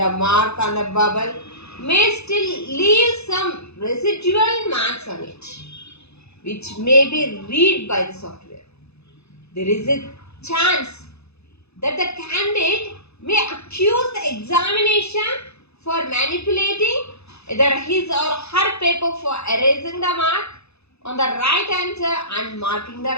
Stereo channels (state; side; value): late; right; 0.79 ms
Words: mark on the bubble may still leave some residual marks on it, which may be read by the software. There is a chance that the candidate may accuse the examination for manipulating either his or her paper for erasing the mark on the right answer and marking the